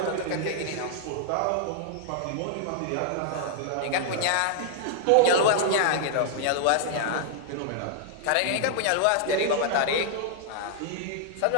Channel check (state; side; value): different; both; correlation 0.00